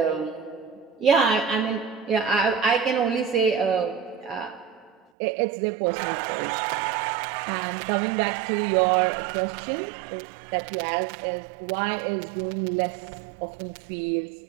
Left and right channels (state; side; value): drops out; left; at 5.0 s